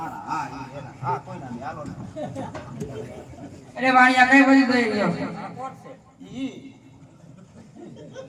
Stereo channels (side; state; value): both; identical; correlation 1.00